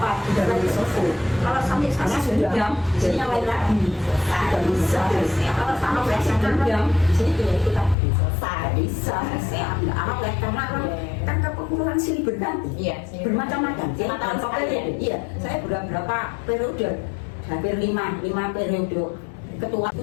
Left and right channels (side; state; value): right; drops out; at 8.0 s